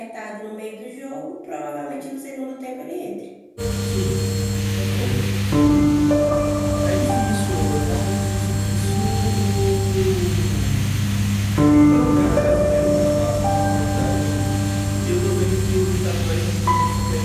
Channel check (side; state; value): both; identical; correlation 1.00